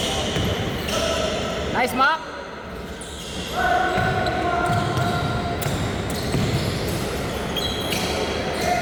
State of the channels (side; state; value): both; identical; correlation 1.00